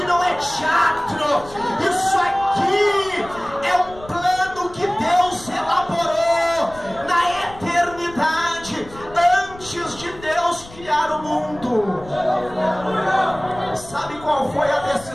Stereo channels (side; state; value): left; noise; rumble, 19 dB below the sound